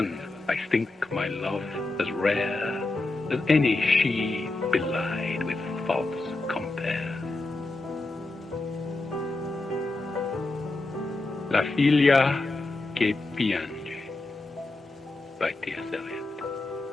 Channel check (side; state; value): right; quieter; 3.1 dB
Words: I think my love as rare as any she belied with false compare. La figlia che piange by T.S. Eliot.